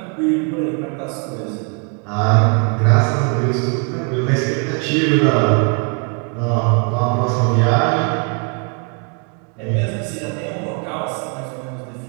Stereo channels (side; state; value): left; quieter; 37.5 dB